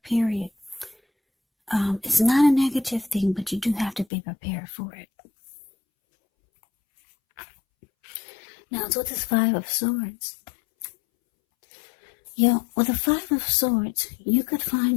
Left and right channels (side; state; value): right; drops out; at 4.0 s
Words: period. It's not a negative thing, but you do have to be prepared for it. Now, it's with this Five of Swords. With the Five of Swords, you could